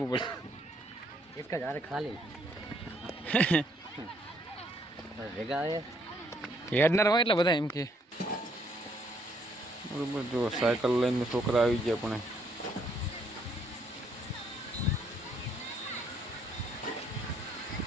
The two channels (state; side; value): normal; both; correlation 0.69